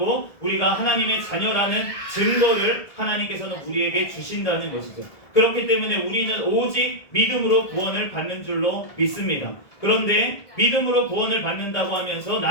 우리가 하나님의 자녀라는 증거를 하나님께서는 우리에게 주신다는 것이죠. 그렇기 때문에 우리는 오직 믿음으로 구원을 받는 줄로 믿습니다. 그런데 믿음으로 구원을 받는다고 하면서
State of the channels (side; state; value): right; late; 1.7 ms